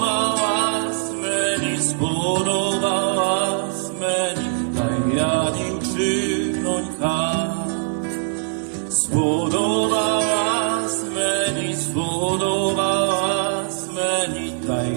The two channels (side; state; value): left; silent; 64 dB below the other